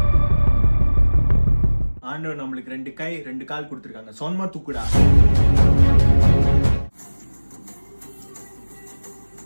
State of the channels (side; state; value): both; inverted; correlation -1.00